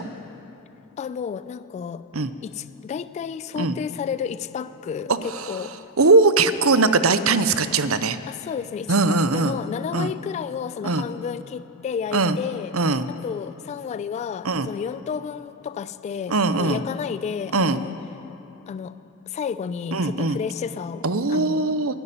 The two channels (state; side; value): normal; both; correlation 0.04